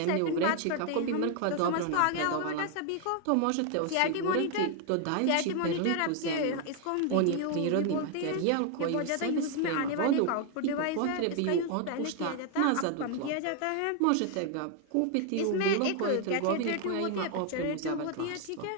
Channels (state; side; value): different; both; correlation 0.00